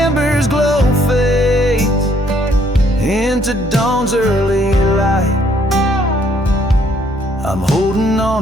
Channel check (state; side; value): normal; both; correlation 0.66